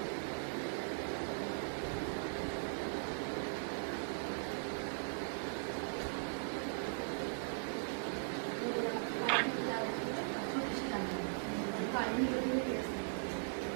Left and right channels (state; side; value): silent; left; digital silence